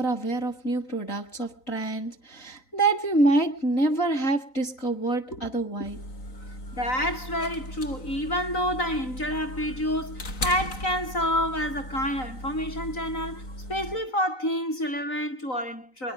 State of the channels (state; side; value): late; right; 3.9 ms